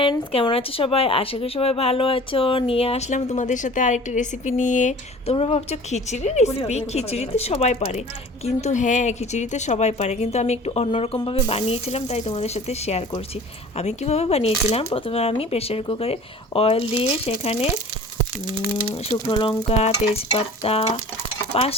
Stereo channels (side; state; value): both; normal; correlation 0.44